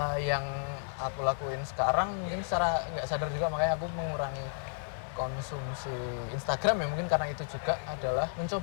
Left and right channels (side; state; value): right; silent; 56 dB below the other